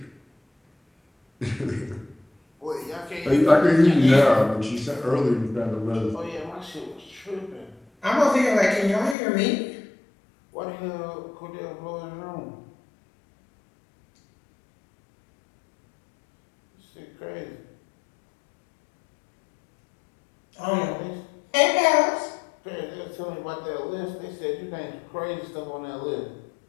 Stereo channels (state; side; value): drops out; right; at 9.2 s